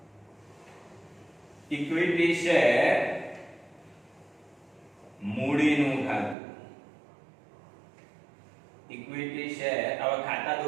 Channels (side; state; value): left; drops out; at 6.4 s